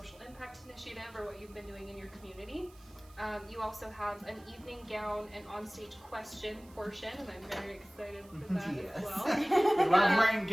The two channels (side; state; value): right; noise; hiss, 26 dB below the sound